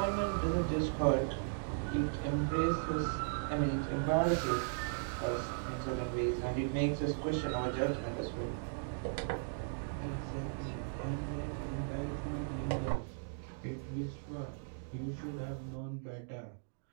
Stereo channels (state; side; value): silent; left; digital silence